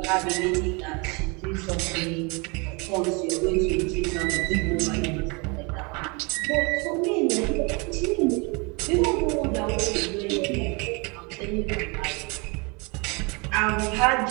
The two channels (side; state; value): left; quieter; 29.9 dB